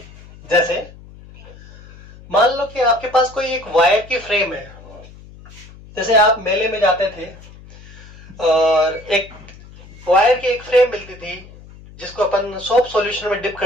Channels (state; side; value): noise; left; hum, 20 dB below the sound